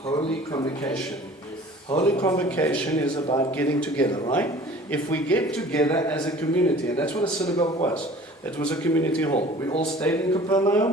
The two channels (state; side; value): normal; both; correlation 0.47